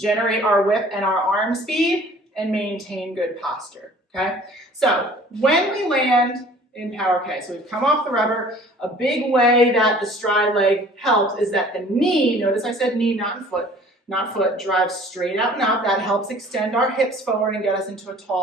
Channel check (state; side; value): normal; both; correlation 0.50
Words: our whip and our arm speed, and maintain good posture. Okay? So when we land in Power K, so we've come off the rubber, a big way that the stride leg helps is that the knee, notice I said knee, not foot, drives straight out and up. That helps extend our hips forward and get us into a